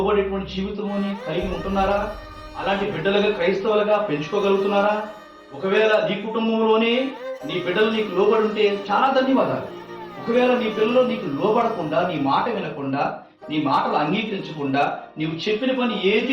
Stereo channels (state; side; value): identical; both; correlation 1.00